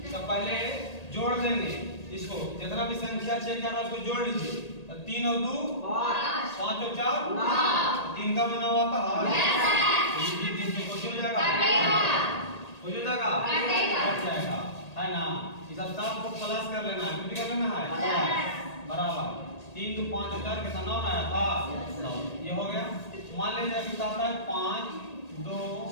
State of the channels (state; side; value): late; right; 1.8 ms